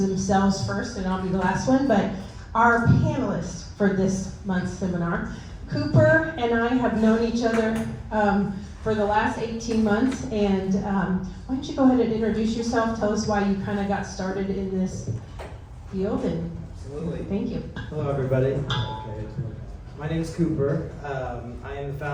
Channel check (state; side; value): identical; both; correlation 1.00